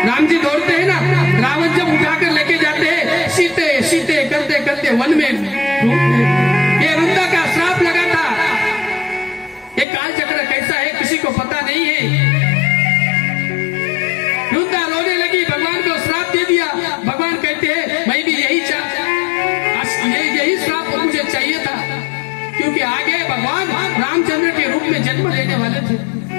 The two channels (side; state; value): right; drops out; at 9.9 s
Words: राम जी दौड़ते हैं ना, रावण जब उठाकर लेके जाते हैं, सीते सीते करते करते वन में ढूंढते। ये वृंदा का श्राप लगा था। ये काल चक्र कैसा है किसी को पता नहीं है। वृंदा रोने लगी, भगवान को श्राप दे दिया। भगवान कहते हैं मैं भी यही श्राप मुझे चाहिए था, क्योंकि आगे भगवान रामचंद्र के रूप में जन्म लेने वाले थे।